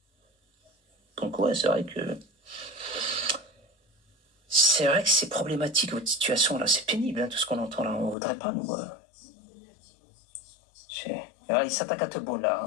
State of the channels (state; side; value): drops out; right; at 8.2 s